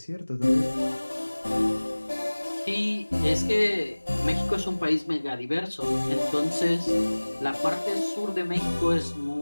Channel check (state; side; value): inverted; both; correlation -1.00